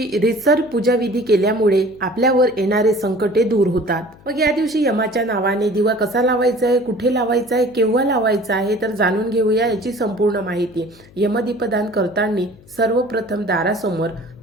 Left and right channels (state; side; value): noise; left; hum, 25 dB below the sound